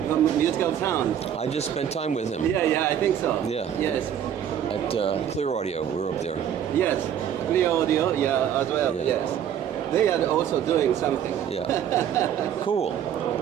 Musical sound. I just spent time with him. Yeah, I think so. Yeah. Yes. At Clear Audio, we were up there. Yes, Clear Audio, as well, Yeah. yes. They are also doing something. Yeah. Cool.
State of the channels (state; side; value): quieter; left; 9.5 dB